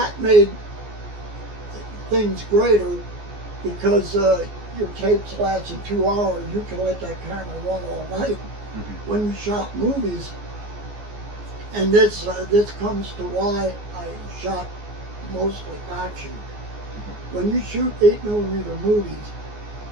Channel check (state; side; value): late; left; 14 ms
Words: made things greater because your tapes lasted 2 hours. You can let that camera run all night. When you shot movies, And this comes to why I shot mostly action. When you shoot 8mm movies,